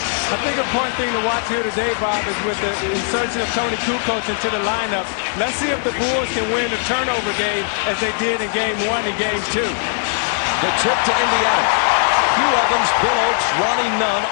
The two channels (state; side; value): silent; right; 64 dB below the other